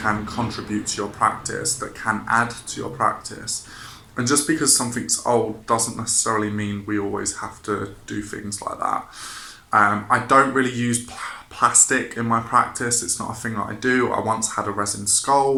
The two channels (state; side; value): identical; both; correlation 1.00